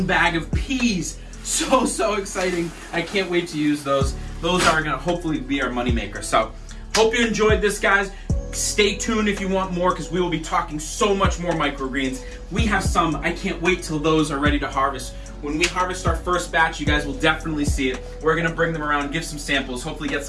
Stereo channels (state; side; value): identical; both; correlation 1.00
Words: bag of peas. So exciting. I can't wait to use those. Those are gonna hopefully be our moneymaker. So, hope you enjoyed this, guys. Stay tuned if you want more, because we will be talking so much more microgreens. We have some, I can't wait till those are ready to harvest. When we harvest our first batch, you guys will definitely see it. We're gonna bring them around, give some samples, hopefully get